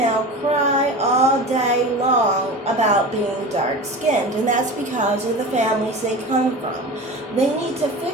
cry all day long about being dark-skinned, and that's because of the families they come from. They need to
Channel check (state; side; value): normal; both; correlation 0.32